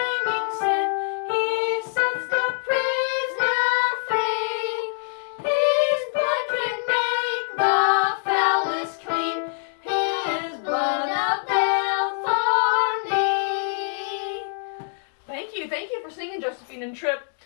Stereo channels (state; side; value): silent; right; digital silence